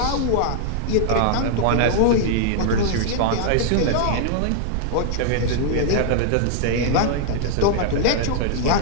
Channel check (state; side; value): different; both; correlation 0.00